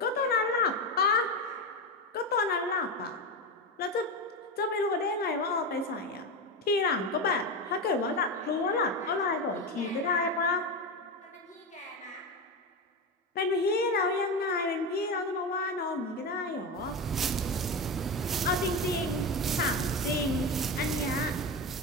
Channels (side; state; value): both; normal; correlation 0.17